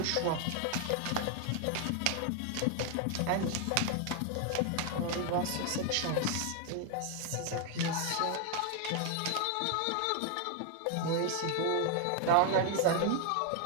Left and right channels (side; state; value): both; different; correlation 0.00